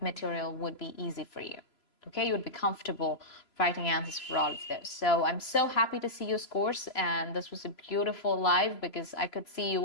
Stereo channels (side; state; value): right; late; 3.0 ms